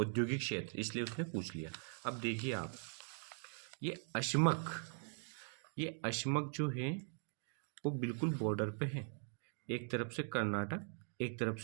क्षेत्र, इसलिए उसने पूछ लिया। अब देखिए आप, ये अश्मक जो है वो बिल्कुल बॉर्डर पे है, एक तरफ से कर्नाटक, एक तरफ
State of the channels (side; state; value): left; silent; 50 dB below the other